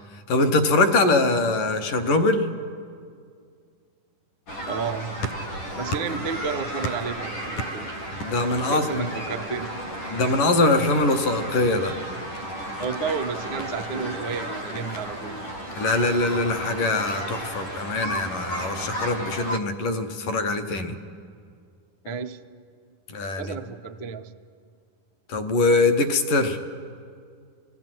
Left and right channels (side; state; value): right; late; 11 ms